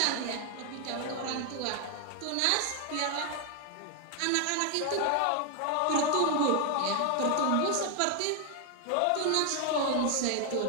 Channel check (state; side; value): different; both; correlation 0.00